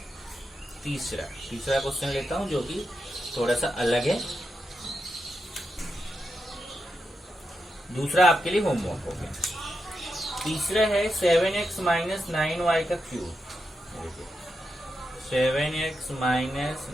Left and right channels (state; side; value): normal; both; correlation 0.87